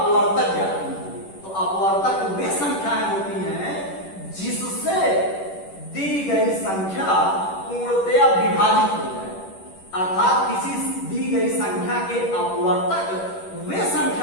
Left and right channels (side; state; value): right; late; 10 ms